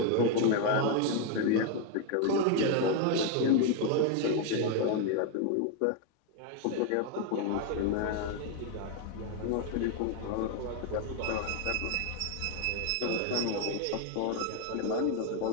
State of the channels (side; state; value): both; different; correlation 0.01